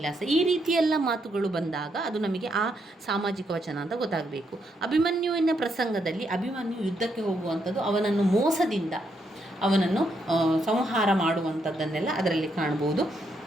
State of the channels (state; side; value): normal; both; correlation 0.77